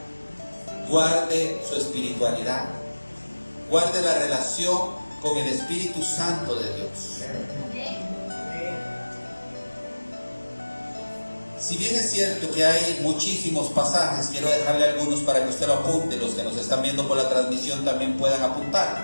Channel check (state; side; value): inverted; both; correlation -1.00